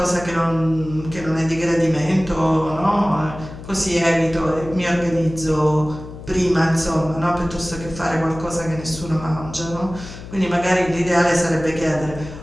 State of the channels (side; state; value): left; noise; hum, 13 dB below the sound